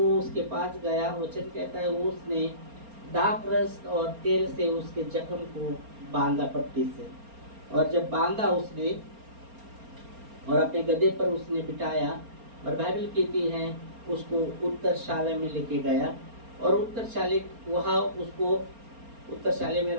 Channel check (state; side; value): late; left; 4.3 ms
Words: उसके पास गया, वचन कहता है वो उसने दाख रस और तेल से उसके जख्म को बांधा पट्टी से, और जब बांधा उसने और अपने गधे पर उसने बिठाया और बाइबल कहती है उसको उत्तरशाला में लेके गया और उसको उत्तरशाले में